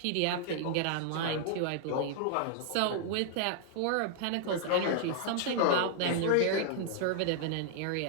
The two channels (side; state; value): both; different; correlation -0.01